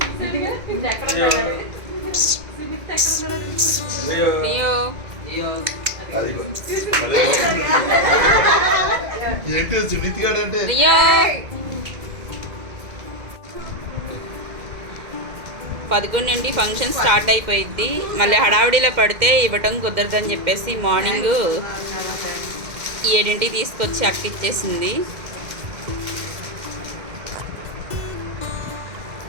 అది మళ్ళీ ఏంటి సునీతి గారు అంటే లియో 11 నుండి ఫంక్షన్ స్టార్ట్ అయిపోయింది మళ్ళీ హడావిడిలో పడితే ఇవ్వటం కుదరదని చెప్పేసి మార్నింగ్ 7ంటికి తీసుకొచ్చి అక్కిచ్చేసింది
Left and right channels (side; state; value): left; late; 2.1 ms